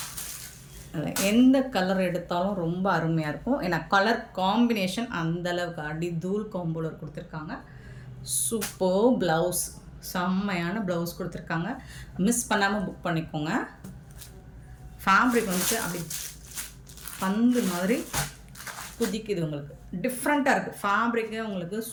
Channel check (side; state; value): both; identical; correlation 1.00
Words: எந்த கலர் எடுத்தாலும் ரொம்ப அருமையாக இருக்கும். ஏன்னா கலர் காம்பினேஷன் அந்தளவுக்கு அடி தூள் காம்போலர் கொடுத்துருக்காங்க. சூப்பர் ப்ளவுஸ், செம்மையான ப்ளவுஸ் கொடுத்துருக்காங்க. மிஸ் பண்ணாமல் புக் பண்ணிக்கோங்க. ஃபேப்ரிக் வந்துட்டு அப்படி பந்து மாதிரி குதிக்குது, உங்களுக்கு டிஃப்ரெண்ட்டாக இருக்குது. ஃபேப்ரிக்கு உங்களுக்கு